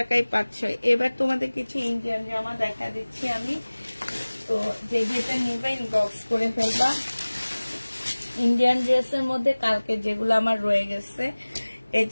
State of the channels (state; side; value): inverted; both; correlation -1.00